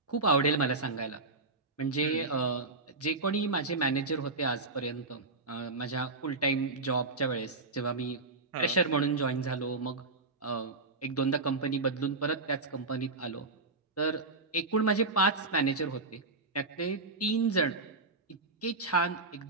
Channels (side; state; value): left; quieter; 3.5 dB